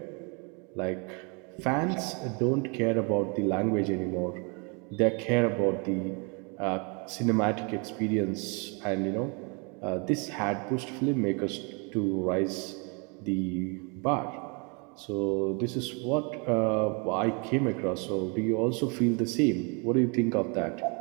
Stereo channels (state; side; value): quieter; left; 33.2 dB